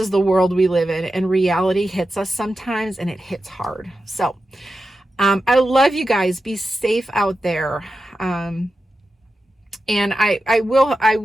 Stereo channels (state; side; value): normal; both; correlation 0.91